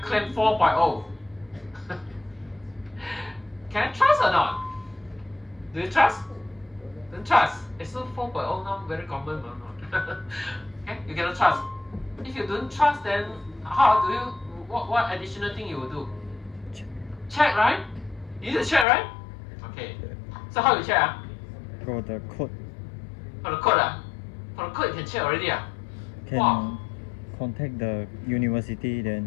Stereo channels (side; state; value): right; drops out; at 18.9 s